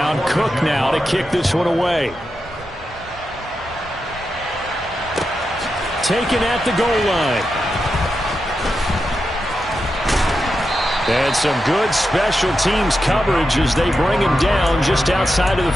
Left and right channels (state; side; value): normal; both; correlation 0.88